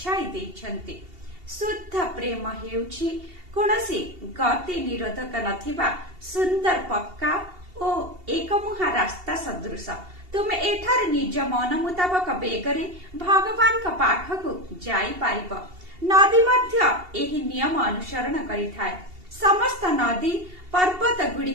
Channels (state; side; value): late; left; 2.8 ms